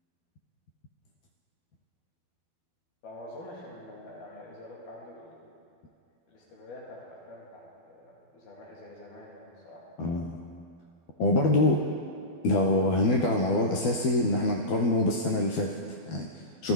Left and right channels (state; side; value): late; right; 12 ms